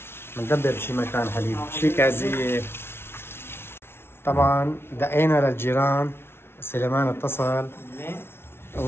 بندبر بشي مكان حليب، شي كازية. طبعا دقينا للجيران، سليمان اتصل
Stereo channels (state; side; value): late; right; 0.12 ms